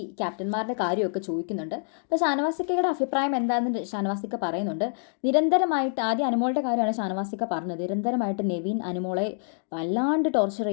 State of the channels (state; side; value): silent; right; digital silence